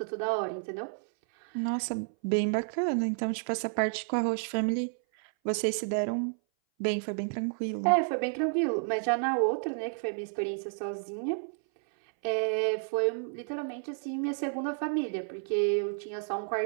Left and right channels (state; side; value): silent; left; 57 dB below the other